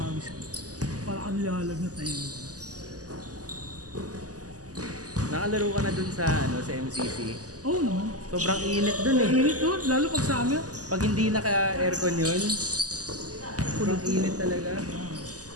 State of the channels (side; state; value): left; late; 0.67 ms